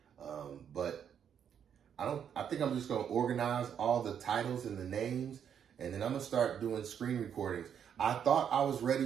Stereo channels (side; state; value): left; quieter; 8.3 dB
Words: But I think I'm just going to organize all the titles and the names, and then I'm going to start doing screen recordings. I thought I was